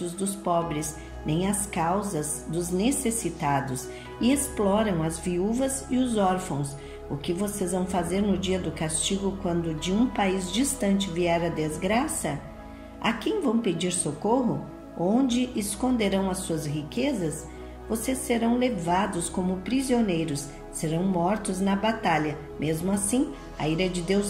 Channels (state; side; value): identical; both; correlation 1.00